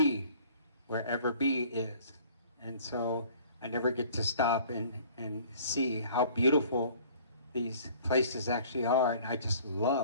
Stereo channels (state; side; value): inverted; both; correlation -0.52